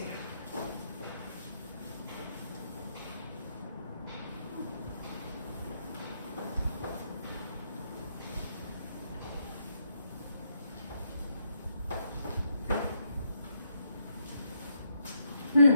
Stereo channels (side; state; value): both; inverted; correlation -0.77